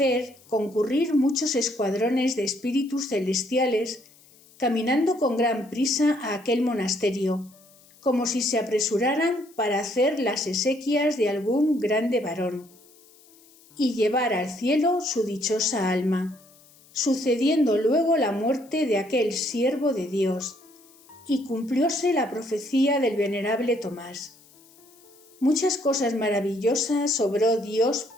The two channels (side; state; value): left; noise; hiss, 27 dB below the sound